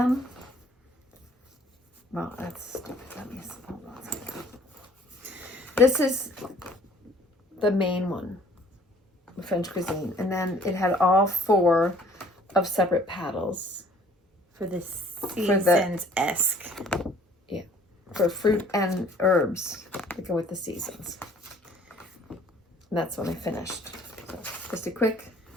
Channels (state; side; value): normal; both; correlation 0.56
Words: Well, that's stupid. Let me see. Hold on a second. This is the main one, French cuisine, and then it had all 4 of separate paddles for the seasons-esque. Yeah, for fruit and herbs that go with the seasons. And that's when I finished. So just a quick